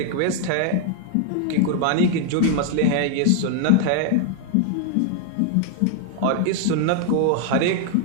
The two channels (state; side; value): different; both; correlation 0.00